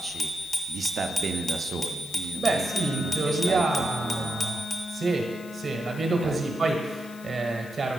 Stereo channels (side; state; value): left; noise; hiss, 20 dB below the sound